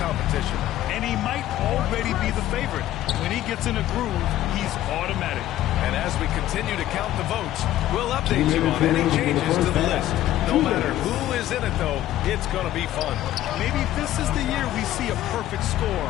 And he might already be the favorite. When he gets in a groove, he's automatic. And as we continue to count the votes, we'll update you on any changes to the list. No matter who is in it, though, it's going to be fun. Maybe this is the year we see a perfect score.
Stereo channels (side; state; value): right; quieter; 13.6 dB